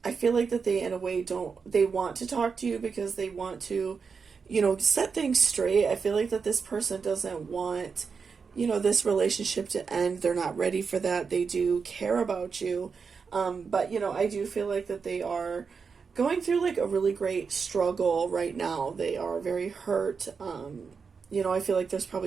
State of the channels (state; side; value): quieter; left; 5.5 dB